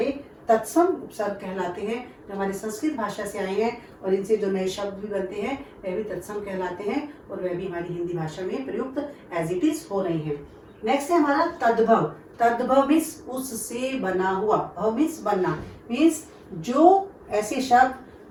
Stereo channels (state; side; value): identical; both; correlation 1.00